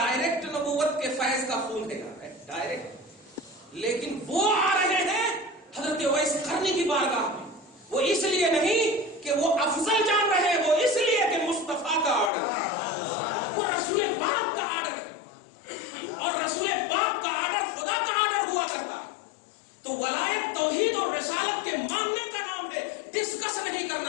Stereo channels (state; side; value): drops out; right; at 12.3 s